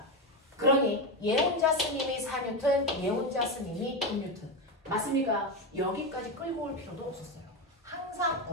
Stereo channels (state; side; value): normal; both; correlation 0.14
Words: 그러니 얘 혼자 쓴 힘이 4뉴턴, 얘 혼자 쓴 힘이 6뉴턴. 맞습니까? 여기까지 끌고 올 필요도 없었어요. 항상